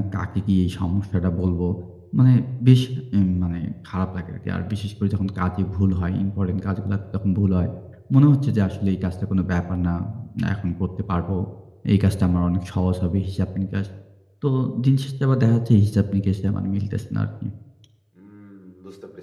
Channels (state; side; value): identical; both; correlation 1.00